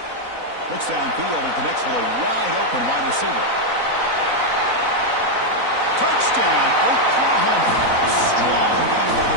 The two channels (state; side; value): late; left; 4.0 ms